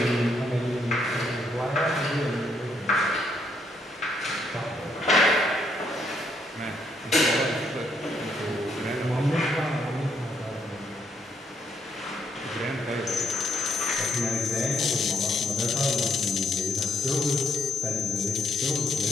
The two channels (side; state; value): both; normal; correlation 0.72